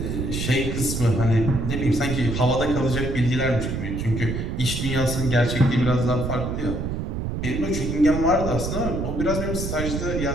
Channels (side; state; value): right; noise; rumble, 3 dB below the sound